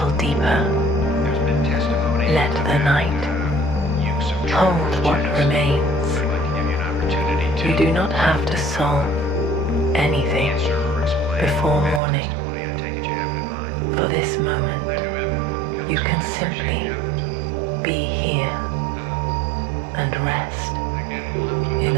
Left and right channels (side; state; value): left; drops out; at 12.0 s